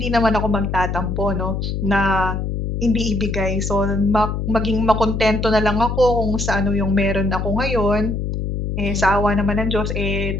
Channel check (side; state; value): left; noise; hum, 2 dB below the sound